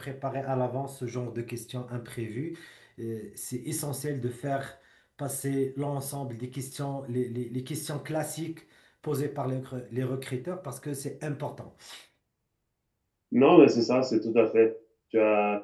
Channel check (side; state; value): both; identical; correlation 1.00